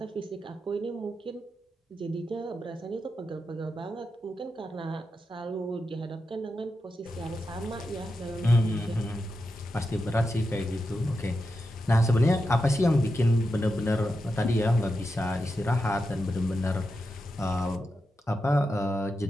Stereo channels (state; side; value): normal; both; correlation 0.88